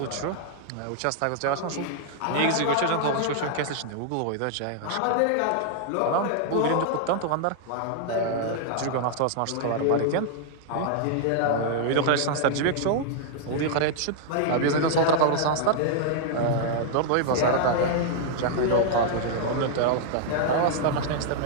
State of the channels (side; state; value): both; different; correlation -0.01